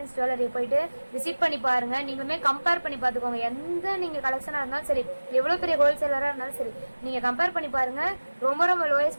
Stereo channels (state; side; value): inverted; both; correlation -1.00